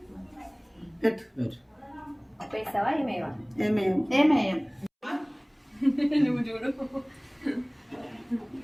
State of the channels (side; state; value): both; identical; correlation 1.00